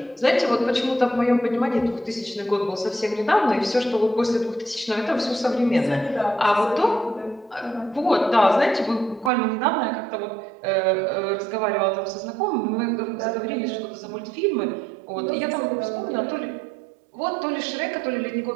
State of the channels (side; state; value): left; drops out; at 9.3 s